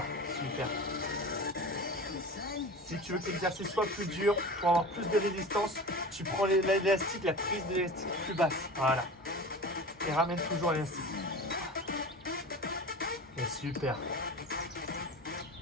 super. Si tu veux que l'exercice soit plus dur, pour avoir plus de résistance, tu prends l'élastique, la prise de l'élastique plus basse. Voilà. Et ramène toujours l'élastique. Et super.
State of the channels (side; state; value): both; normal; correlation 0.33